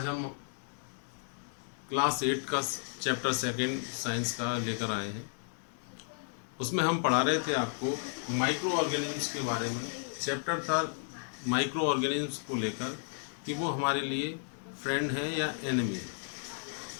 हम क्लास 8 का चैप्टर सेकंड साइंस का लेकर आए हैं। उसमें हम पढ़ा रहे थे आपको माइक्रो ऑर्गेनिज्म्स के बारे में। चैप्टर था माइक्रो ऑर्गेनिज्म्स को लेकर कि वो हमारे लिए फ्रेंड हैं या एनिमी है।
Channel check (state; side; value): silent; right; digital silence